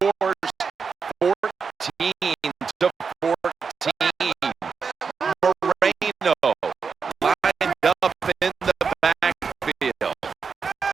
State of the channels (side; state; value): left; quieter; 5.6 dB